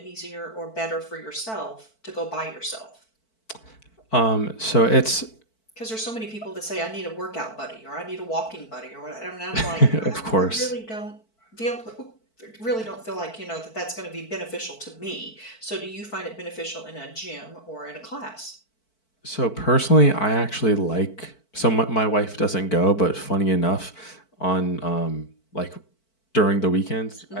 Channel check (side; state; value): right; late; 4.5 ms